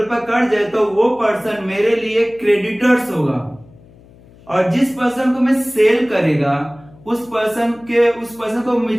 ऊपर कर्ज है तो वो पर्सन मेरे लिए क्रेडिटर्स होगा। और जिस पर्सन को मैं सेल करेगा उस पर्सन को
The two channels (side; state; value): left; noise; hum, 25 dB below the sound